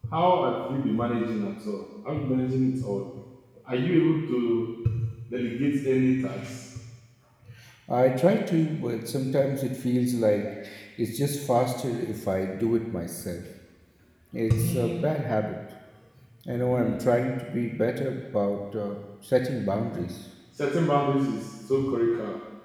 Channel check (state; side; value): identical; both; correlation 1.00